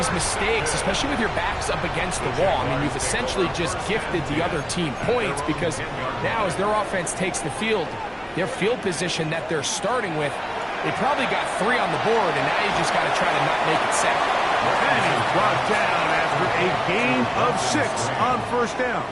mistakes, especially with your backs up against the wall. I mean, you've essentially just gifted the other team points because now as their offense takes the field, their field position that they're starting with, they probably got 3 on the board, and now you just got to try to not make it 7. And he's brought down after a gain of 6 on 1st down.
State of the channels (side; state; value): both; identical; correlation 1.00